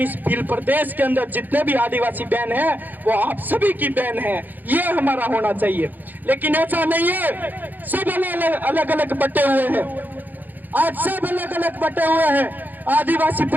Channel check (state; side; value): late; left; 0.085 ms